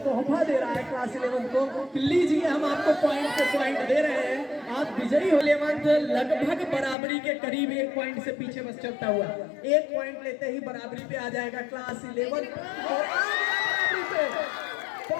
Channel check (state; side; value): drops out; right; at 7.0 s